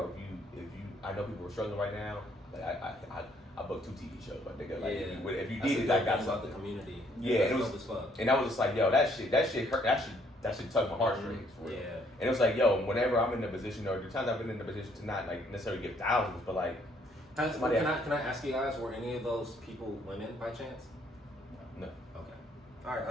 if you, I know people are struggling right now. Like I booked 2 TV shows, but nigga, like if you need it, I got about the community. Yeah, and I was just like, yo, that shit hurt. That shit tug my heartstrings. For real. Yeah. And it was like, yo, whenever I'm in a position, or the times I've been in a position to not like necessarily give thousands, but like. Can I ask you guys, were any of those people women by chance? No. Okay. All right. I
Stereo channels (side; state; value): both; normal; correlation 0.66